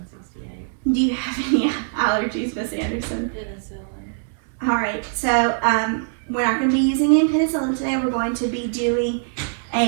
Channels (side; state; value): left; silent; 64 dB below the other